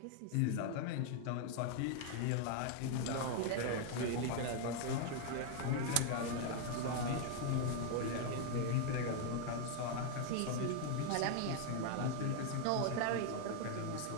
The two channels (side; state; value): both; different; correlation 0.00